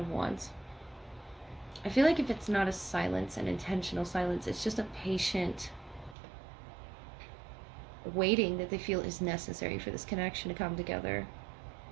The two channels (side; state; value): left; drops out; at 6.2 s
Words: Wands, I feel like if it's not a silence, an intentional silence, it's just a patient waiting that they feel is necessary for this connection to come together.